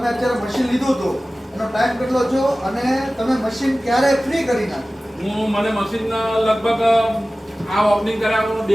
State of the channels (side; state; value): both; normal; correlation 0.97